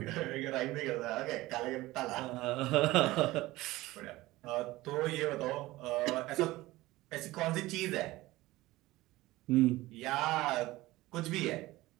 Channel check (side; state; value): left; quieter; 18.4 dB